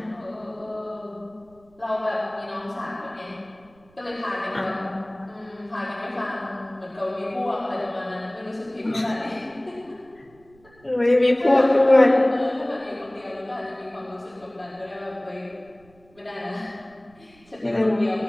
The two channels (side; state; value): right; noise; rumble, 29 dB below the sound